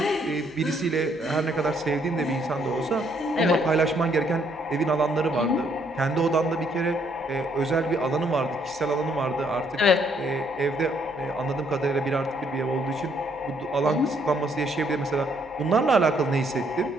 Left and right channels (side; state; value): right; noise; hum, 30 dB below the sound